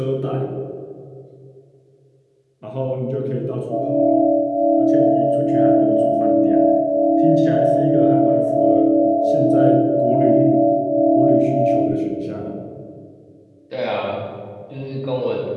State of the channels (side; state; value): both; identical; correlation 1.00